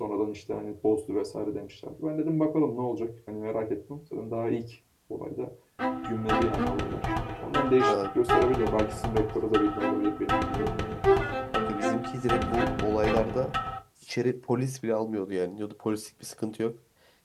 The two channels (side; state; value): both; identical; correlation 1.00